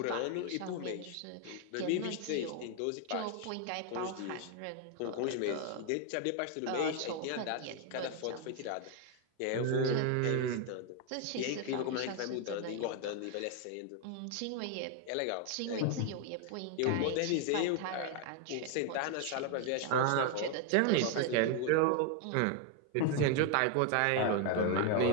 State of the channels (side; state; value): both; different; correlation 0.01